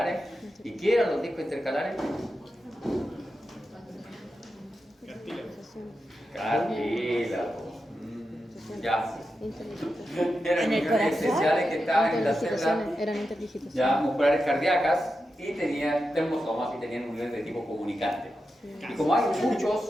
¿Y qué eran los discos intercalares? Cartílago. Ya. Eran uniones especiales que estaban en las células ya musculares cardíacas y tenían termosomas y tenían uniones de tipo comunicante. Y como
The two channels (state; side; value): normal; both; correlation 0.89